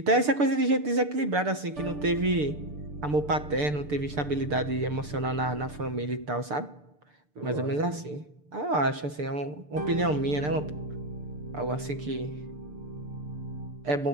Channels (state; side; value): late; left; 6.8 ms